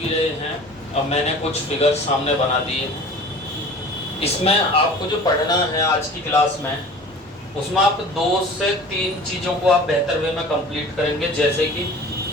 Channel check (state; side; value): normal; both; correlation 0.42